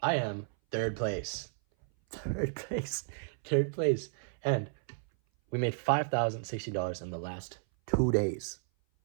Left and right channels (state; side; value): silent; left; 56 dB below the other